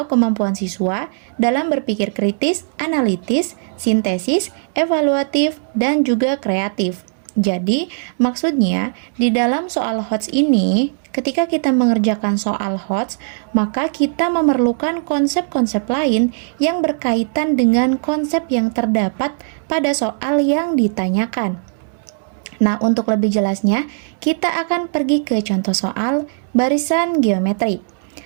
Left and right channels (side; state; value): left; silent; digital silence